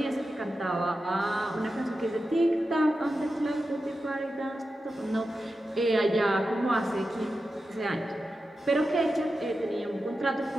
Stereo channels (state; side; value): normal; both; correlation 0.91